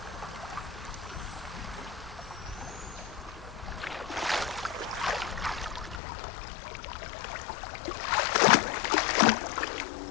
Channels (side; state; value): right; drops out; at 6.0 s